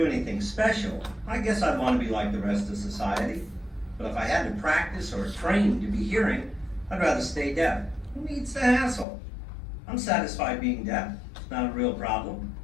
anything special, I guess I'd want to be like the rest of society. But if I had to practice or train to be hearing, I'd rather stay deaf. Who needs the hassle? I'm satisfied being deaf. It's not a real problem.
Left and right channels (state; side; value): drops out; right; at 9.1 s